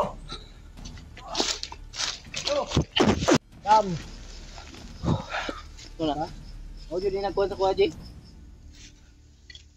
Kam. Ito na. O, yun yung nagkuhan sa kuha, Jay.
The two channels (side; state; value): both; identical; correlation 1.00